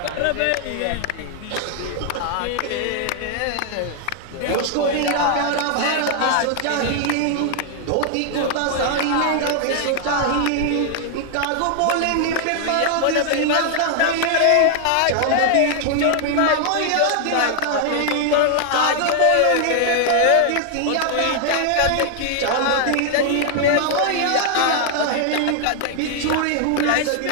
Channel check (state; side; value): different; both; correlation 0.00